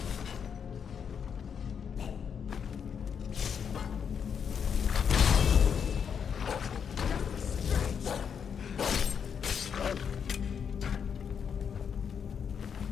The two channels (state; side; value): quieter; right; 7.2 dB